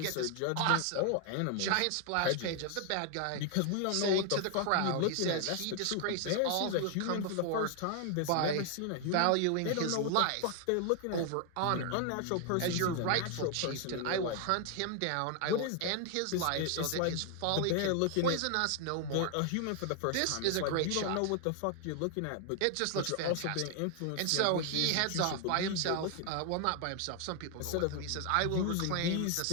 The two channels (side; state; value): both; different; correlation 0.00